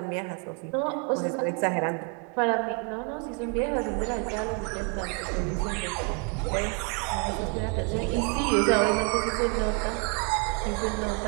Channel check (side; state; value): left; quieter; 33.8 dB